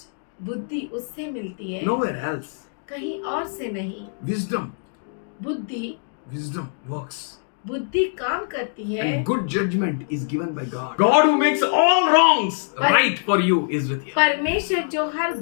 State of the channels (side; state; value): right; silent; digital silence